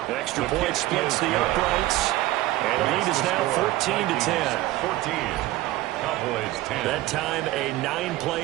Extra point splits the uprights. And the lead is now 14-10. 14. Cowboys 10. That time a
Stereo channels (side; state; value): left; quieter; 16.9 dB